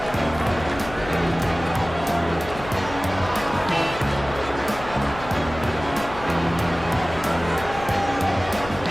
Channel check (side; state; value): left; noise; hum, 13 dB below the sound